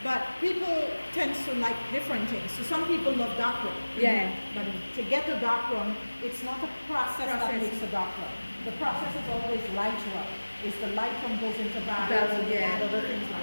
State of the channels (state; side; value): inverted; both; correlation -1.00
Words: But people tend to like different things. So some people love dark rum. But to get a dark rum, it's not a process that makes a dark rum. The process is always light rum. It's the light rum goes into barrels and add other things